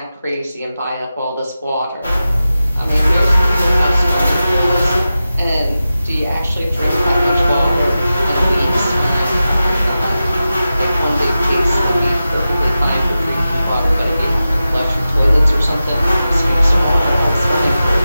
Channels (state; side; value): inverted; both; correlation -0.93